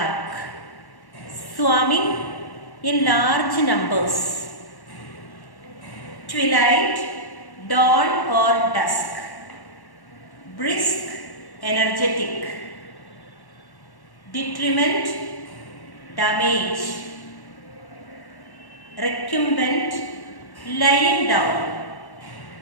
Swarming in large numbers. Twilight, dawn or dusk. Brisk, energetic. Detriment, damage. Recumbent, lying down.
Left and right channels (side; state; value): right; late; 1.1 ms